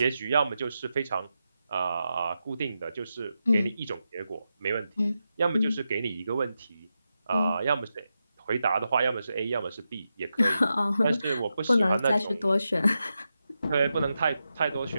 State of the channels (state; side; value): inverted; both; correlation -0.88